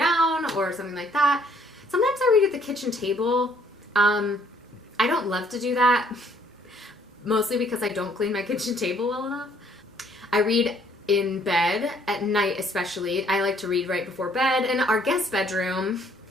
or something like that. Sometimes I read at the kitchen table. I don't love to do that, mostly because I don't clean my kitchen table well enough. I read in bed at night especially. I like to read right before bed. In our guest bedroom,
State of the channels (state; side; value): normal; both; correlation 0.63